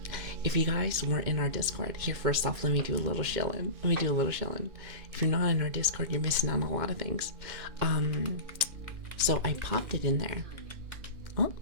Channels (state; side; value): late; left; 2.4 ms